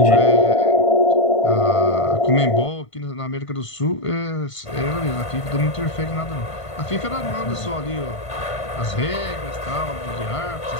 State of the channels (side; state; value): right; late; 1.5 ms